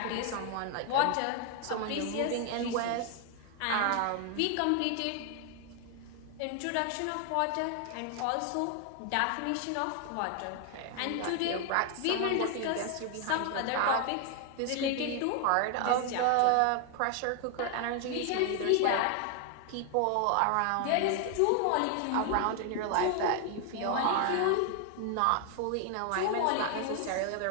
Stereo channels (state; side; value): different; both; correlation 0.00